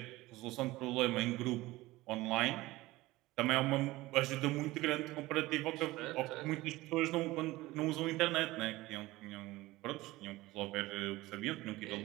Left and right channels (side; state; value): left; quieter; 19.0 dB